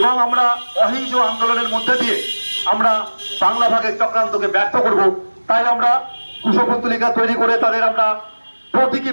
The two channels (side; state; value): both; inverted; correlation -1.00